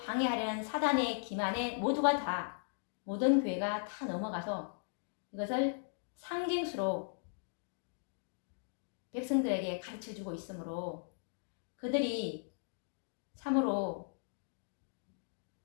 사단의 기만에 모든 교회가 다 넘어가서 이것을 상징수로 백성들에게 가르쳐주고 있으므로 그들이 참으로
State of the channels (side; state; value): right; silent; digital silence